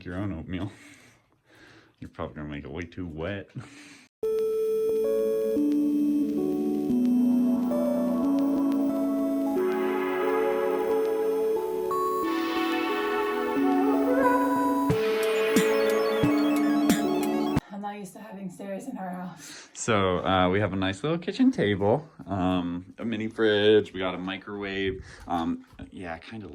your own oatmeal. You're probably gonna make it way too wet. I'm not used to having stairs in our house. So we have a nice little kitchen table, a mini fridge, we got a microwave. Yeah, kind of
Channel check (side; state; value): both; identical; correlation 1.00